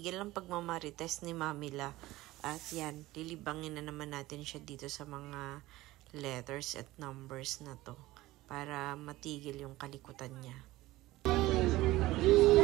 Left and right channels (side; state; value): left; quieter; 17.9 dB